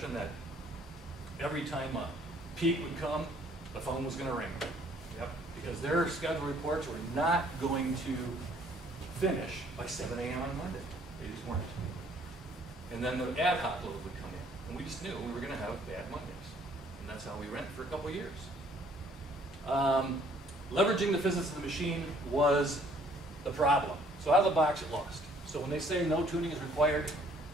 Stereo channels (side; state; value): both; normal; correlation 0.61